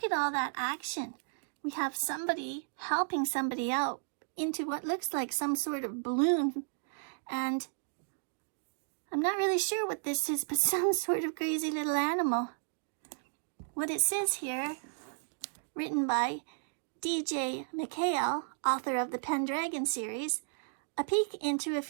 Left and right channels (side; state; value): left; silent; digital silence